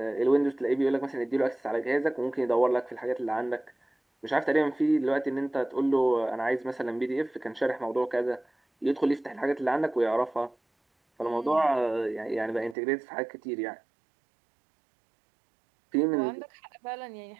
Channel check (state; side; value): drops out; left; at 12.8 s